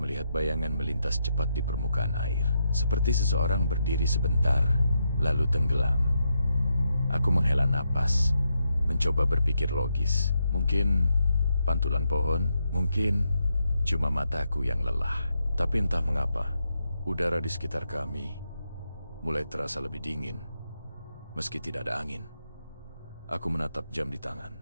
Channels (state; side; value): inverted; both; correlation -0.82